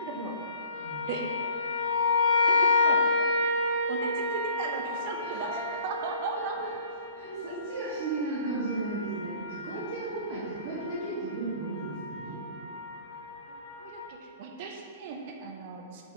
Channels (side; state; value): both; inverted; correlation -0.51